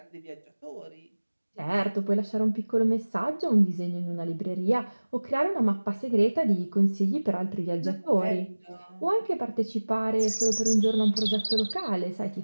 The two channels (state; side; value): inverted; both; correlation -1.00